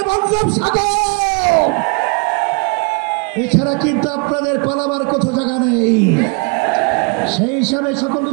বঙ্গোপসাগর। এছাড়া কিন্তু আপনাদের পালাবার কোথাও জায়গা নেই। সেই হিসাবে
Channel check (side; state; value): left; quieter; 33.5 dB